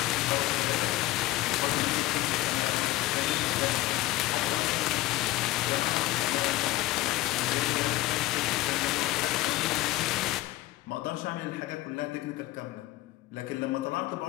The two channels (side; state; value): right; quieter; 17.2 dB